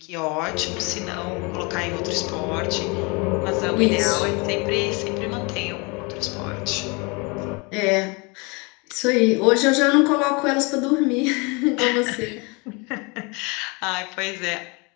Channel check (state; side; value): quieter; right; 29.1 dB